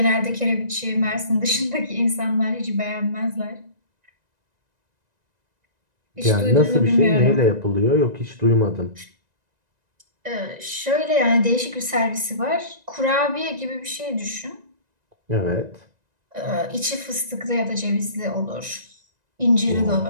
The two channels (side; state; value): left; late; 1.9 ms